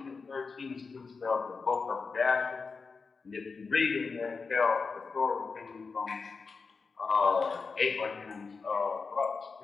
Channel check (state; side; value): quieter; right; 4.7 dB